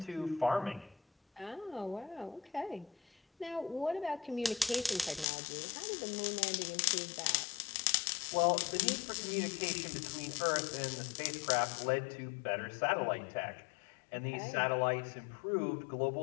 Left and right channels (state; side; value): drops out; right; at 5.2 s